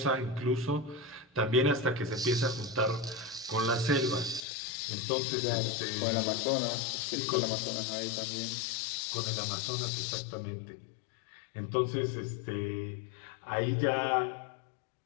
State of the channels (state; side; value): drops out; right; at 4.4 s